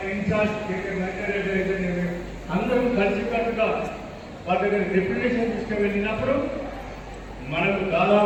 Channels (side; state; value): both; identical; correlation 1.00